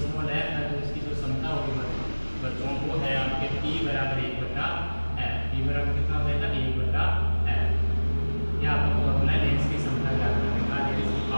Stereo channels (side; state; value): both; inverted; correlation -1.00